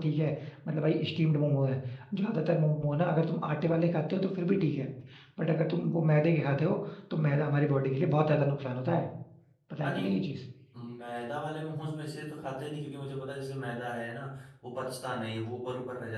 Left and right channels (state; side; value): identical; both; correlation 1.00